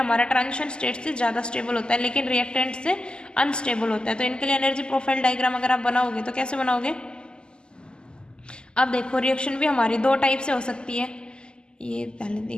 ट्रांजिशन स्टेट से ज़्यादा स्टेबल होता है, लेकिन रिएक्टेंट से अनस्टेबल होता है। तो इनके लिए एनर्जी प्रोफाइल डायग्राम अगर आप बनाओगे तो कैसे बनाओगे, अब देखो रिएक्शन भी हमारी दो टाइप से हो सकती है, ये पहले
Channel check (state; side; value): late; right; 0.048 ms